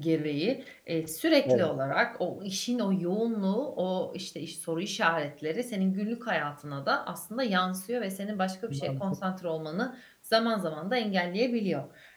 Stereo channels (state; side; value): identical; both; correlation 1.00